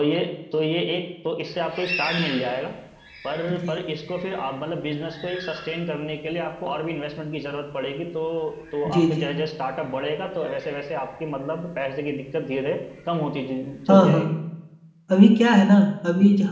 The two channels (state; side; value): identical; both; correlation 1.00